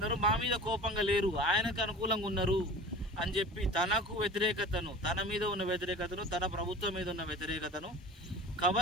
మా మీద కోపంగా లేరు, ఆయనకు అనుకూలంగా ఉన్నారు అని చెప్పి తనకు వ్యతిరేకతను, తన మీద ఉన్న వ్యతిరేకతను, తన ప్రభుత్వం మీద ఉన్న వ్యతిరేకతను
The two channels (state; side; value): normal; both; correlation 0.38